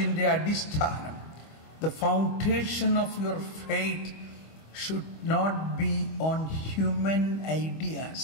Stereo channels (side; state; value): right; late; 25 ms